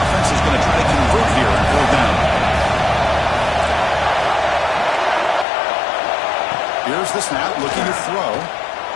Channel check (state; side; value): drops out; right; at 5.5 s